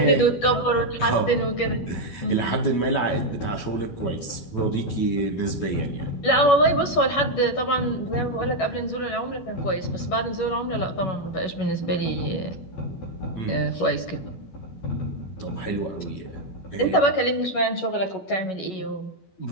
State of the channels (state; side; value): late; right; 12 ms